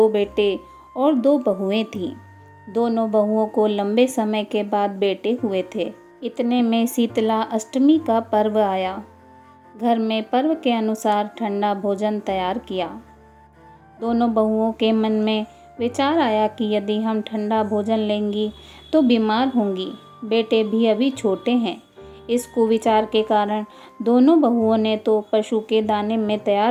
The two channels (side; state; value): both; identical; correlation 1.00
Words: बेटे और 2 बहुएं थीं। दोनों बहुओं को लंबे समय के बाद बेटे हुए थे। इतने में शीतला अष्टमी का पर्व आया। घर में पर्व के अनुसार ठंडा भोजन तैयार किया। दोनों बहुओं के मन में विचार आया कि यदि हम ठंडा भोजन लेंगी तो बीमार होंगी। बेटे भी अभी छोटे हैं। इस कुविचार के कारण दोनों बहुओं ने तो पशु के दाने में